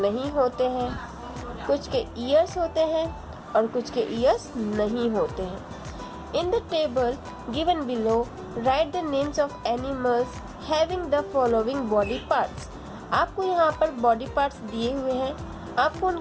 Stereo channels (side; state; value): both; identical; correlation 1.00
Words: नहीं होते हैं. कुछ के ईयर्स होते हैं और कुछ के ईयर्स नहीं होते हैं. In the table given below, write the names of animals having the following body parts. आपको यहाँ पर बॉडी पार्ट्स दिए हुए हैं. आपको